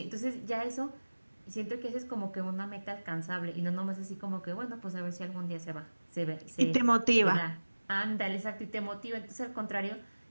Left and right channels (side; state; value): both; inverted; correlation -1.00